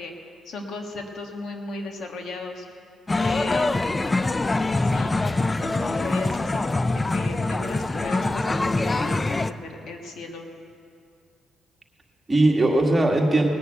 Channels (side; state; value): both; normal; correlation 0.92